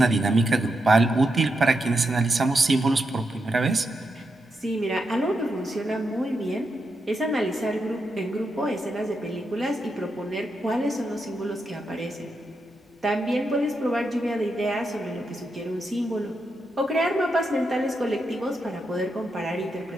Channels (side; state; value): both; normal; correlation 0.85